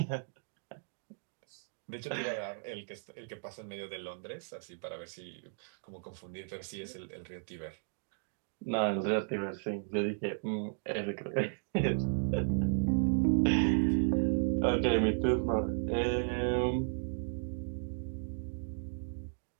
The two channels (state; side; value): silent; left; digital silence